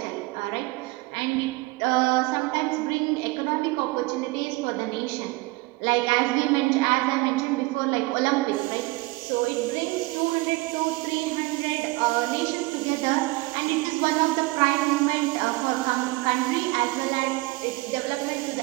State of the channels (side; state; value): left; quieter; 22.4 dB